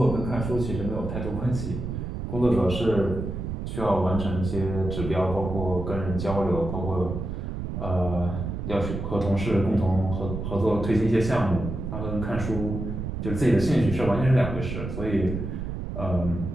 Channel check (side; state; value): right; noise; rumble, 5 dB below the sound